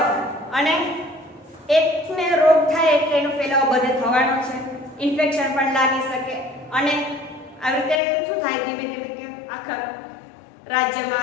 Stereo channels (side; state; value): right; drops out; at 8.0 s